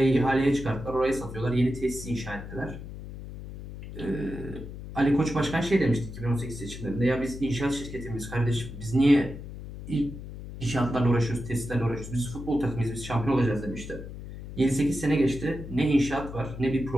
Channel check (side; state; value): left; noise; hum, 11 dB below the sound